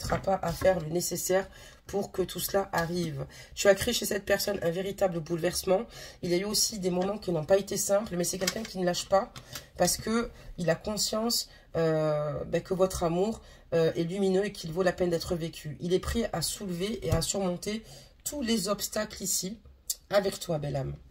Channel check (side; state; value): both; identical; correlation 1.00